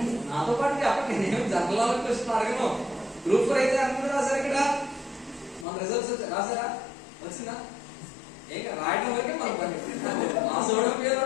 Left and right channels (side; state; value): right; drops out; at 5.7 s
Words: నాతో పాటు చెప్పండి, నేను జనరల్ క్వశ్చన్ అడగను. గ్రూప్ 4 అయితే అందరూ రాశారు. ఇక్కడ మన రిజల్ట్స్ రాసారా? వచ్చిందా? ఏక రాయడం వరకే మన పని. మా సోడం పేరు